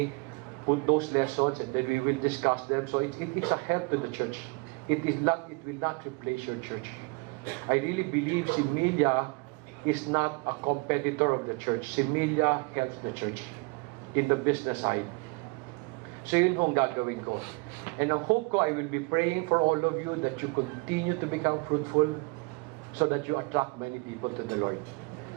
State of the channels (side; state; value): left; quieter; 29.3 dB